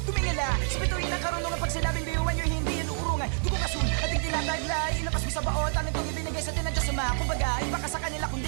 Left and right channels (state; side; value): silent; left; 59 dB below the other